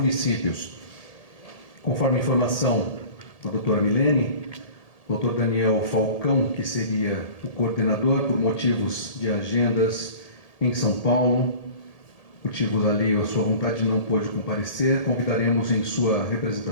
Conforme a informação da doutora Milene, o doutor Daniel Falcão, que seria o coordenador por motivos de agendas em São Paulo, motivos ali, a sua vontade não pôde comparecer, convidaremos em sua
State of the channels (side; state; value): right; late; 1.8 ms